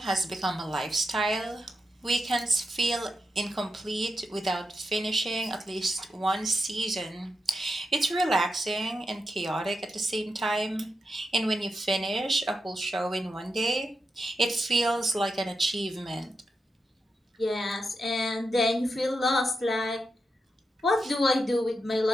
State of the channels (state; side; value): normal; both; correlation 0.87